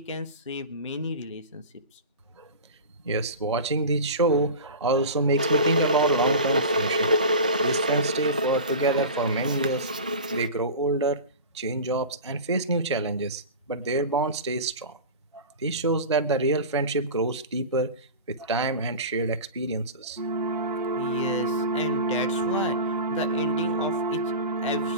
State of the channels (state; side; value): inverted; both; correlation -0.30